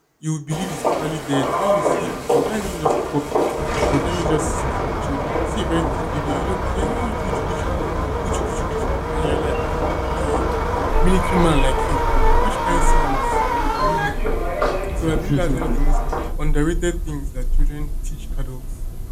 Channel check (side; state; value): both; identical; correlation 1.00